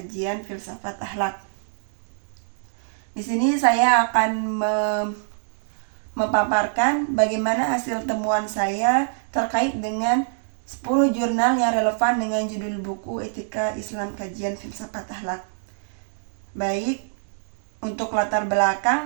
Filsafat Akhlak. Di sini saya akan memaparkan bagaimana hasil temuan saya terkait dengan 10 jurnal yang relevan dengan judul buku Etika Islam Kajian Filsafat Akhlak. Baik, untuk latar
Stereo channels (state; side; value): silent; left; digital silence